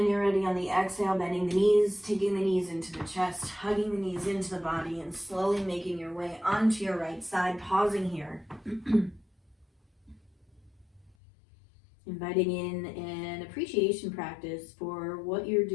you're ready on the exhale, bending the knees, taking the knees into the chest, hugging the knees into the body, and slowly making your way onto your right side, pausing here. Inviting in an appreciation practice for what you're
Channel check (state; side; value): drops out; right; at 11.2 s